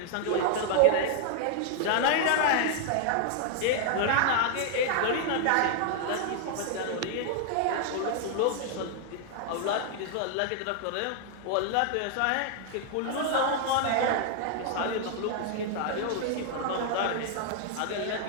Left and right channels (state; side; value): different; both; correlation 0.00